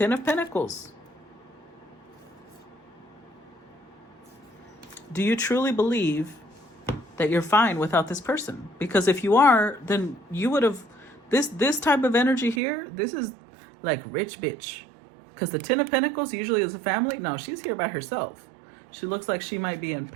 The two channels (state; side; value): drops out; left; at 12.6 s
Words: of Pentacles. Do you truly believe that you're fine without this person? Because if you are, then you would have, this type of energy here, this is like rich bitch. Because the 10 of Pentacles usually is a family. No, she's here by herself. She looks like she might be in